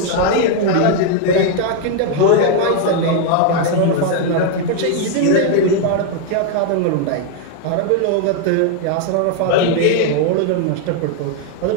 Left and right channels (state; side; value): different; both; correlation 0.00